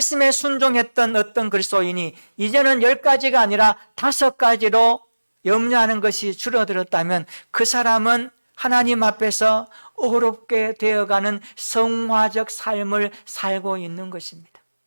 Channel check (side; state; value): both; inverted; correlation -1.00